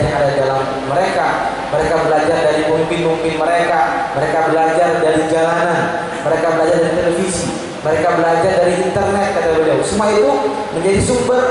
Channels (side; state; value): both; identical; correlation 1.00